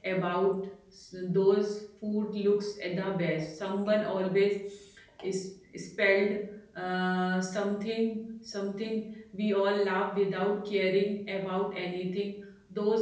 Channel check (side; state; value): both; identical; correlation 1.00